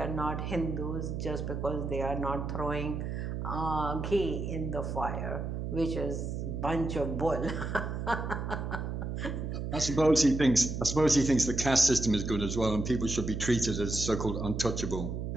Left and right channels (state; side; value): noise; right; hum, 4 dB below the sound